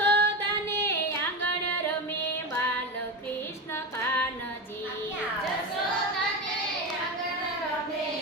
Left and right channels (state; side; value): normal; both; correlation 0.20